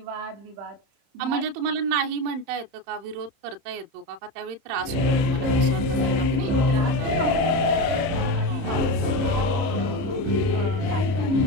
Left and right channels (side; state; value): left; late; 30 ms